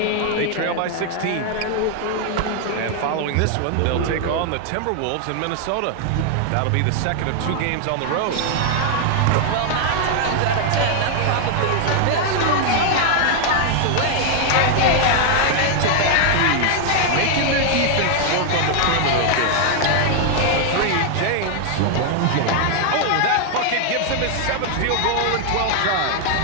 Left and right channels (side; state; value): both; different; correlation 0.00